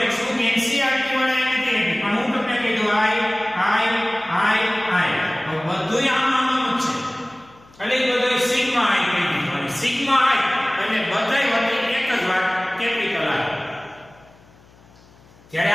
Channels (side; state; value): left; noise; hum, 27 dB below the sound